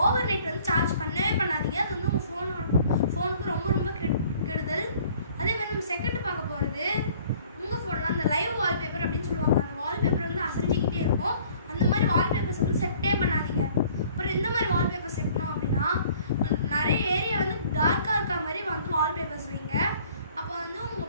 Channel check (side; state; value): both; inverted; correlation -0.55